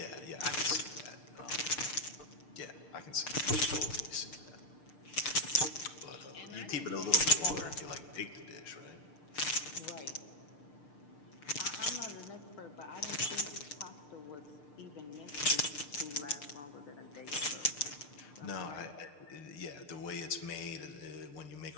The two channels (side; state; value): right; late; 6.7 ms